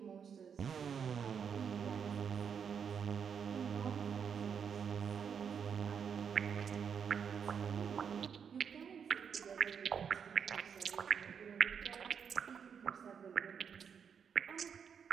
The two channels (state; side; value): quieter; left; 7.1 dB